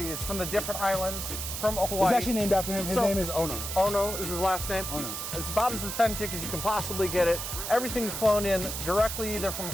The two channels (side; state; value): right; noise; hiss, 5 dB below the sound